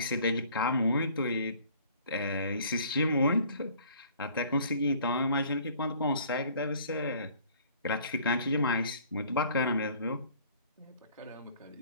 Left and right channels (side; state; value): both; inverted; correlation -0.54